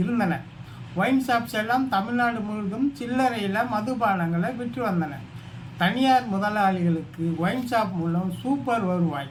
இருந்தன. ஒயின் ஷாப்ஸ் எல்லாம் தமிழ்நாடு முழுவதும் சில்லறையில் மதுபானங்களை விற்று வந்தன. தனியார் முதலாளிகளுக்கு ஒயின் ஷாப் மூலம் சூப்பர்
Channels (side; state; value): both; identical; correlation 1.00